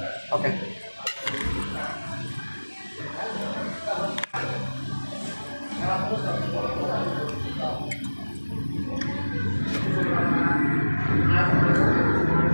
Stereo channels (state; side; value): inverted; both; correlation -1.00